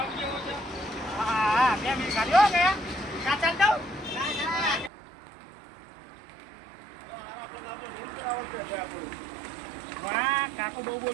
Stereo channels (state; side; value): drops out; left; at 4.9 s